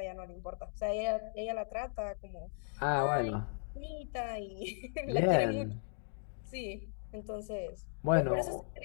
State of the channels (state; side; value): silent; right; digital silence